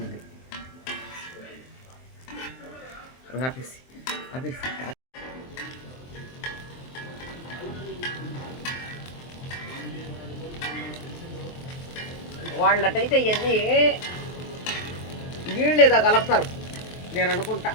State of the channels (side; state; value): right; late; 23 ms